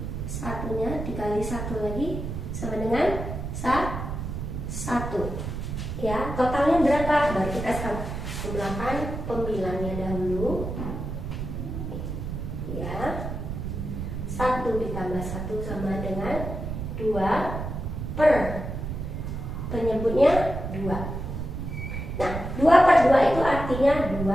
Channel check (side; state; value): right; noise; rumble, 5 dB below the sound